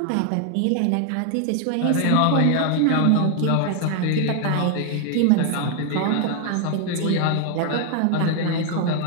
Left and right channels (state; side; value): different; both; correlation 0.00